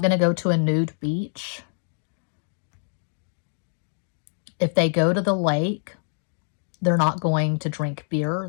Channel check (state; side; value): silent; right; digital silence